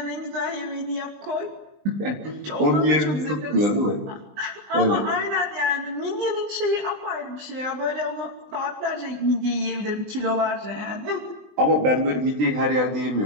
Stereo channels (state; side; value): late; left; 20 ms